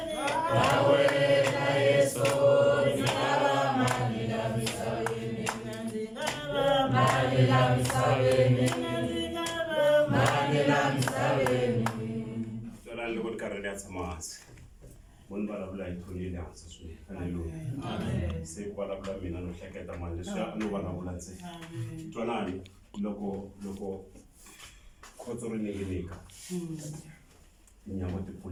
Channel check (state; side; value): identical; both; correlation 1.00